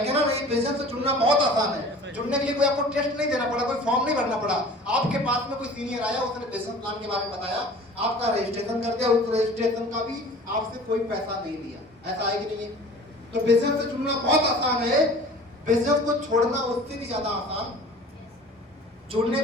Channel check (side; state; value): both; normal; correlation 0.44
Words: नहीं, बिजनेस से चुनना बहुत आसान है। जुड़ने के लिए कोई आपको टेस्ट नहीं देना पड़ा, कोई फॉर्म नहीं भरना पड़ा। आपके पास में कोई सीनियर आया, उसने बिजनेस प्लान के बारे में बताया, आपका रजिस्ट्रेशन कर दिया, उस रजिस्ट्रेशन का भी आपसे कोई पैसा नहीं लिया। ऐसा है कि नहीं है? तो बिजनेस से चुनना बहुत आसान है, बिजनेस को छोड़ना उससे भी ज्यादा आसान। जुड़ने